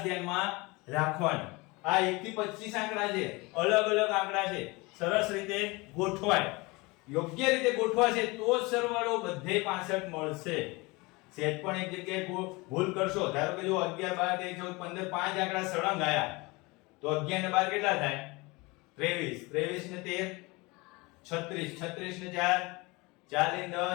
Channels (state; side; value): quieter; right; 24.7 dB